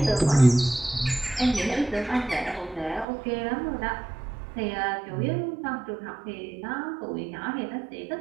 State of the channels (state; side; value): drops out; left; at 3.1 s